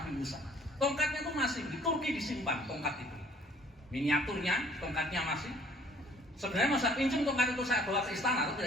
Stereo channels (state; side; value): normal; both; correlation 0.57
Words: Musa. Tongkatnya itu masih di Turki disimpan, tongkat itu. Miniaturnya, tongkatnya masih. Sebenarnya masa pinjam tongkat itu saya bawa ke istana, atau